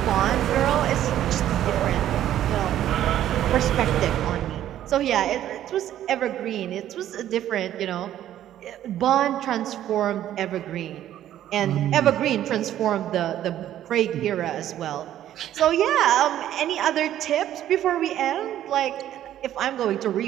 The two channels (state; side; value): quieter; left; 11.9 dB